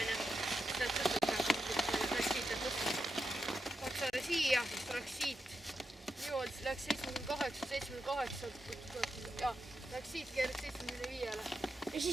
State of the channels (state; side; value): normal; both; correlation 0.87